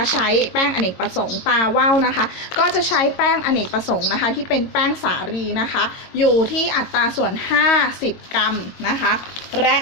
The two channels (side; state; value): right; late; 22 ms